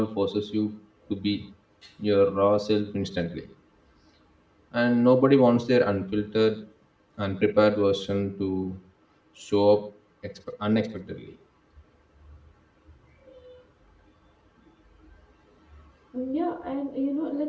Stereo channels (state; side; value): identical; both; correlation 1.00